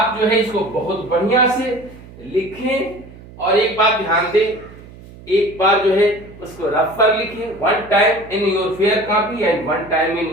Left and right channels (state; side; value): noise; right; hum, 19 dB below the sound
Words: जो है इसको बहुत बढ़िया से लिखें और एक बात ध्यान दें, एक बार जो है उसको रफ पर लिखें, one time in your fair copy and one time in